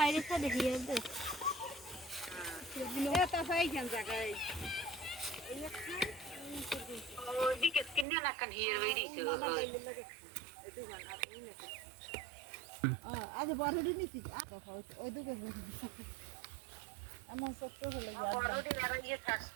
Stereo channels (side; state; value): left; drops out; at 8.1 s